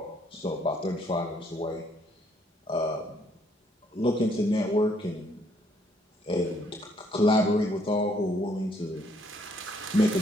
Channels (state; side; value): normal; both; correlation 0.68